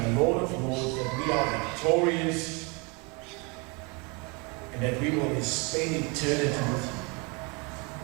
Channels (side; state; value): left; quieter; 30.2 dB